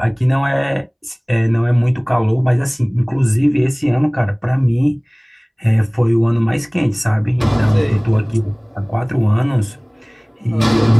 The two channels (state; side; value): identical; both; correlation 1.00